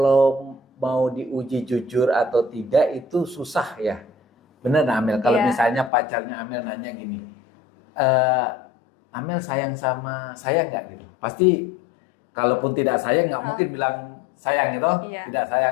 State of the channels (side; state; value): right; drops out; at 5.9 s